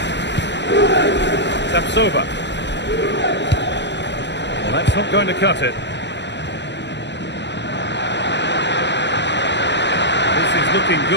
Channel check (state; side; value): late; right; 0.51 ms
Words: Tapsova. Well, that's not going to cut it. This is looking